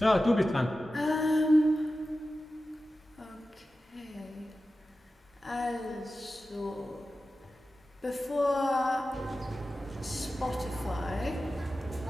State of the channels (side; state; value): both; normal; correlation 0.94